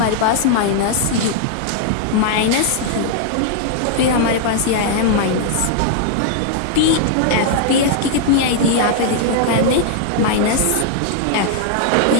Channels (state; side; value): different; both; correlation -0.01